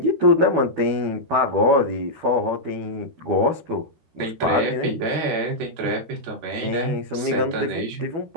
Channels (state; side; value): late; left; 13 ms